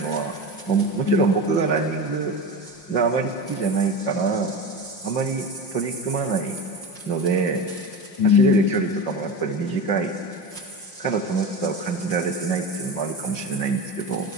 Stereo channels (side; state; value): right; late; 5.6 ms